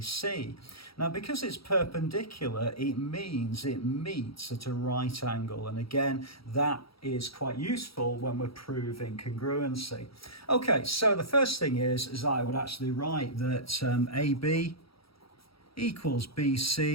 Now, because it's perpendicular, it means it meets at a right angle. And again, that is quite useful when we're proving congruency. Okay, so the first thing is I would actually write that AB equals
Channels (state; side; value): late; right; 0.75 ms